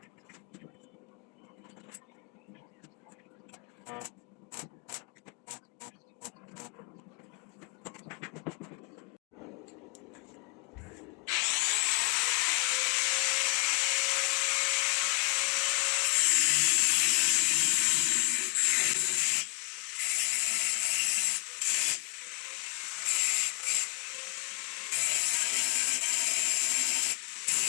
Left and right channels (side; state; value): right; quieter; 27.8 dB